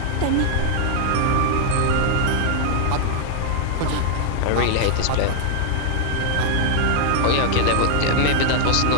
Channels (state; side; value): different; both; correlation 0.00